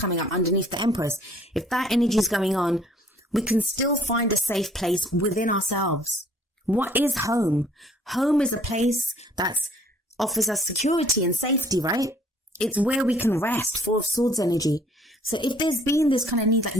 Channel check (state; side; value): normal; both; correlation 0.58